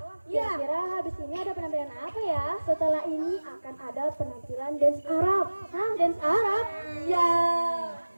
Ya. kira-kira habis ini ada penampilan apa ya? Setelah ini akan ada penampilan dance Arab. Hah, dance Arab? Ya.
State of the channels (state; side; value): inverted; both; correlation -1.00